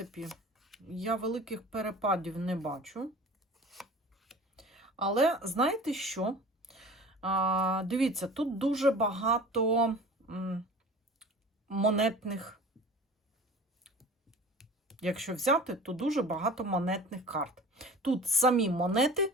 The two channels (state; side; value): normal; both; correlation 0.40